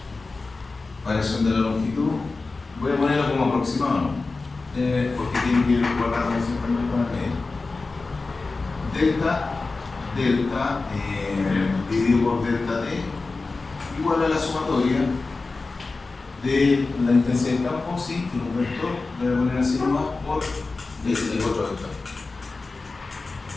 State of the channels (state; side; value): quieter; right; 3.8 dB